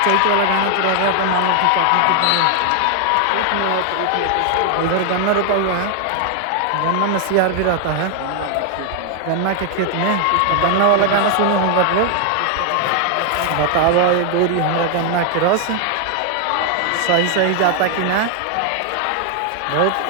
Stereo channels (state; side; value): different; both; correlation 0.00